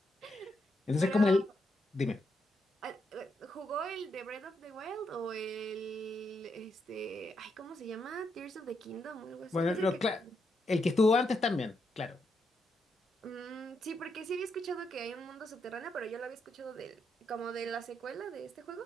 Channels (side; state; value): both; normal; correlation 0.81